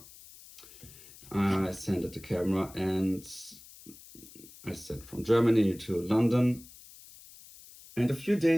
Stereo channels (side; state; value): left; noise; hiss, 20 dB below the sound